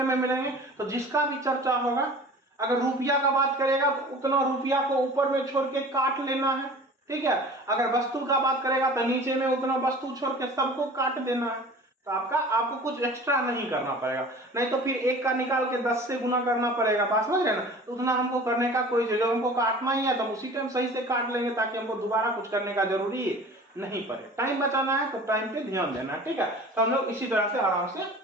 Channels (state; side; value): normal; both; correlation 0.42